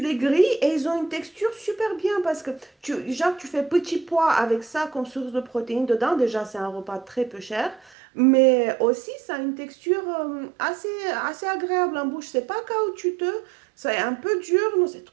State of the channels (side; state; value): left; drops out; at 7.9 s